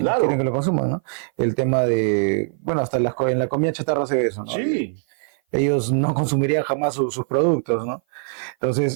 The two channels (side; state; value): left; silent; 56 dB below the other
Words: que lo consuman, ¿no? El tema de, bueno, hasta en la comida chatarra se ve eso, ¿no? Sí. Ellos no consumirían jamás sus productos, ¿no?